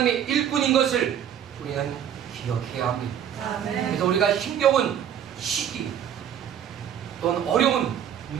일꾼인 것을 우리는 기억해야 합니다. 아멘. 그래서 우리가 힘겨운 시기 또는 어려운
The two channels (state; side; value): quieter; left; 9.4 dB